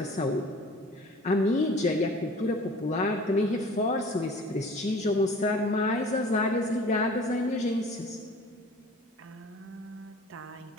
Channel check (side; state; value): both; normal; correlation 0.46